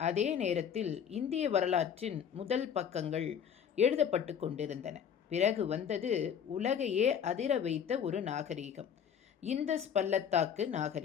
அதே நேரத்தில் இந்திய வரலாற்றின் முதல் பக்கங்கள் எழுதப்பட்டு கொண்டிருந்தன. பிறகு வந்தது உலகையே அதிர வைத்த ஒரு நாகரீகம், இந்தஸ் பள்ளத்தாக்கு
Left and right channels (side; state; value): right; quieter; 8.1 dB